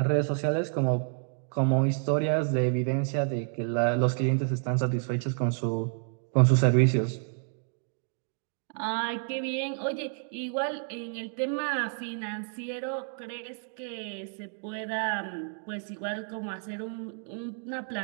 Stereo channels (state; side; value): silent; left; 58 dB below the other